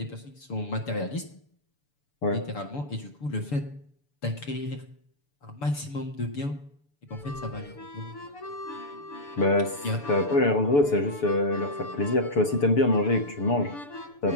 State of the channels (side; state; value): right; late; 6.9 ms